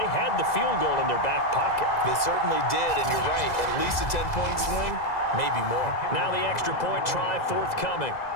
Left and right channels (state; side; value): late; right; 2.0 ms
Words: had the field goal in their back pocket. They certainly did, and you're right. At least a 10-point swing, maybe more. Now the extra point try forthcoming.